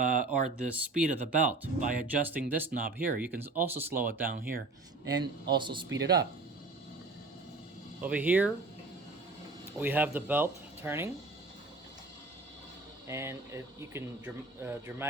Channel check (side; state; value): left; quieter; 3.4 dB